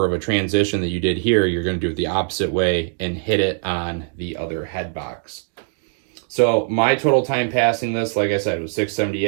of a transition that you did here. You're going to do it the opposite way and hit it on the other head box. So my total time passing this, like I said, was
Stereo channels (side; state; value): left; silent; digital silence